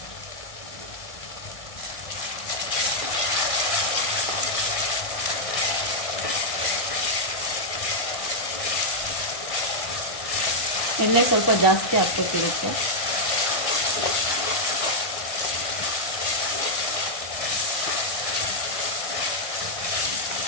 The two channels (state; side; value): late; right; 1.5 ms